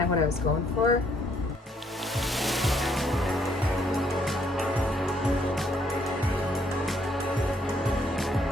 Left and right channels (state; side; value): normal; both; correlation 0.69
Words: of what I was going for.